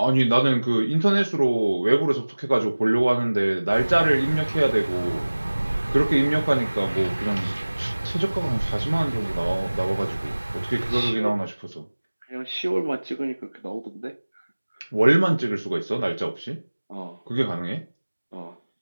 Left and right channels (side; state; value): both; inverted; correlation -1.00